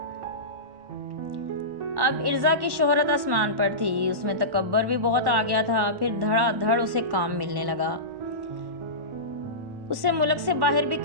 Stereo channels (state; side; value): late; left; 1.1 ms